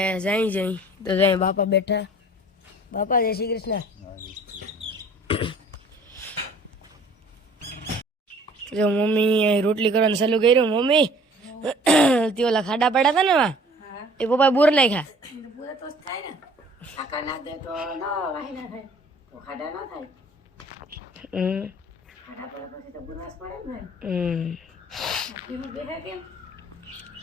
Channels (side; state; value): both; normal; correlation 0.51